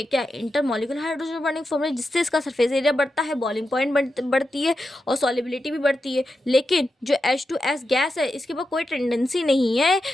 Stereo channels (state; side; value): normal; both; correlation 0.89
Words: क्या inter molecule hydrogen bonding form है, जिससे इसका सरफेस एरिया बढ़ता है, बॉइलिंग पॉइंट बढ़ती है और सॉलिबिलिटी भी बढ़ती है। लेकिन जो H2S गैस है इसके पास कोई टेंडेंसी नहीं है